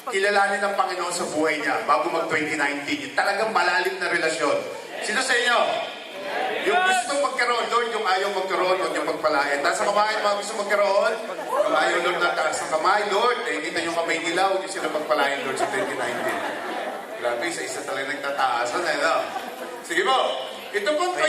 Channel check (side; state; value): both; identical; correlation 1.00